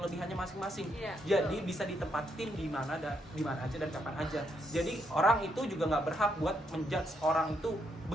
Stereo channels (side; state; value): both; normal; correlation 0.76